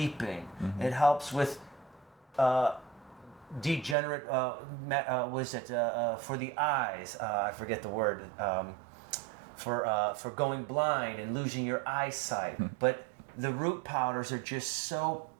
It helps with degenerate, for the eyes, I forget the word, for going blind and losing your eyesight. But the root powders are just so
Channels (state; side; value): drops out; left; at 4.0 s